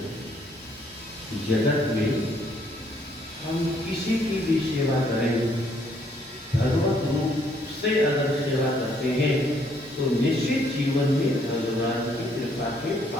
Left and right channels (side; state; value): both; normal; correlation 0.68